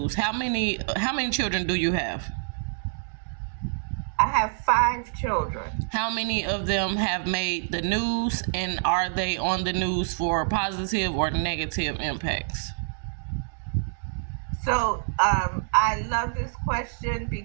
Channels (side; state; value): left; silent; digital silence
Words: How many children do you have? I have 5 children. How many of them have made the news, and are they on the news for positive or negative impacts? So I love this question